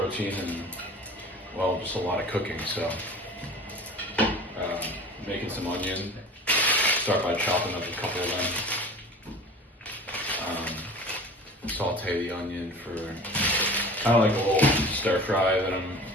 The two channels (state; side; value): normal; both; correlation 0.40